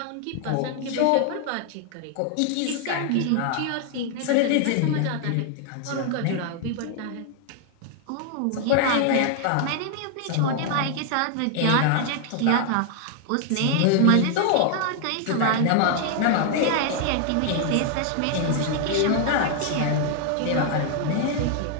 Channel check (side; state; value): both; different; correlation 0.00